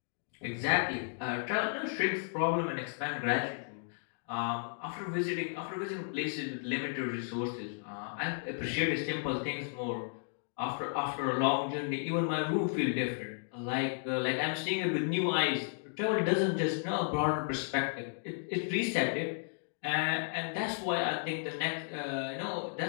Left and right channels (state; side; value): silent; right; digital silence